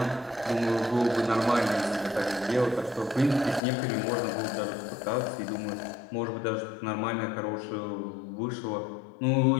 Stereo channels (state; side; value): drops out; right; at 3.6 s